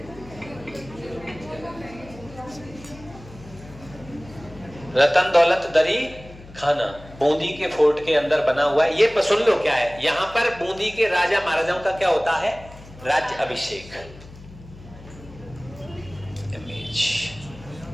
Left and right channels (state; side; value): noise; left; hum, 18 dB below the sound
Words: रतन दौलत दरी खाना बूंदी के फोर्ट के अंदर बना हुआ है। ये सुन लो क्या है, यहां पर बूंदी के राजा महाराजाओं का क्या होता है? राज्य अभिषेक। इमेज